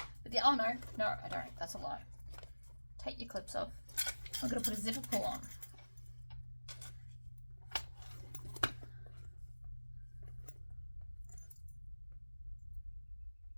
oh no, I don't. That's a lie. Take your clips off. I'm going to put a zipper pull on.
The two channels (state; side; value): inverted; both; correlation -1.00